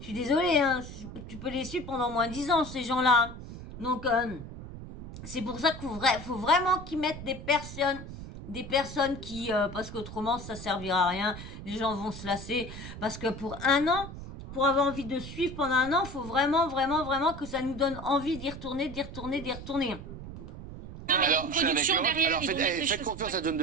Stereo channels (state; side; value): noise; right; rumble, 11 dB below the sound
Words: désolée, hein, tu peux les suivre pendant moins 10 ans, ces gens-là. Donc, c'est pour ça qu'il faut vraiment qu'ils mettent des personnes qui, parce qu'autrement, ça servira à rien. Les gens vont se lasser. Parce que pour un an, pour avoir envie de suivre pendant un an, il faut vraiment que ça nous donne envie d'y retourner. Non, mais il y a une production derrière. Alors ils vont mettre les faites choses- confiance à John